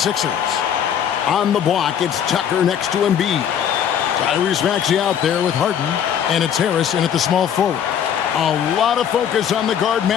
On the block, it's Tucker next to Embiid. Tyrese Maxey out there with Harden. And it's Harris in at the small forward. A lot of focus on the guard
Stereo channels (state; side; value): quieter; right; 8.9 dB